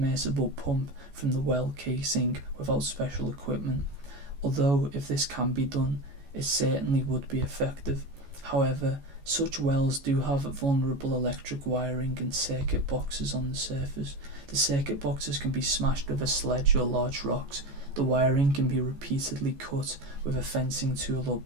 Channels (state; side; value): late; left; 14 ms